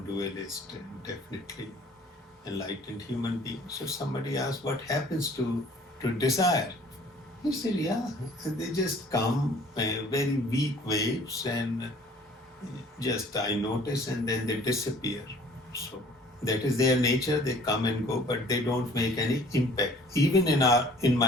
and definitely enlightened human being. So somebody asked, what happens to desire? He said, yeah, they just come very weak waves, and just I notice, and then they disappear. So that is their nature. They come and go, but they don't make any impact, even in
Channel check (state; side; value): normal; both; correlation 0.52